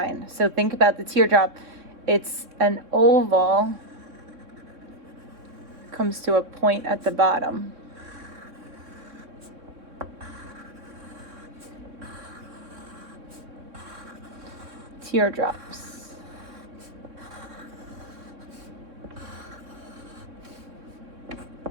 So think about the teardrop. It's an oval, comes to a point at the bottom. Teardrops.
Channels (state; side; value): late; left; 3.6 ms